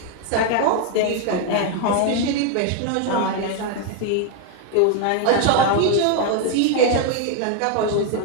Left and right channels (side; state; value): both; different; correlation 0.01